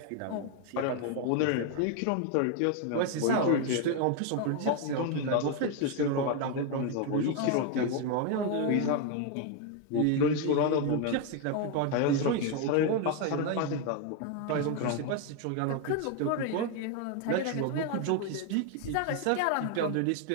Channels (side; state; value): both; different; correlation 0.01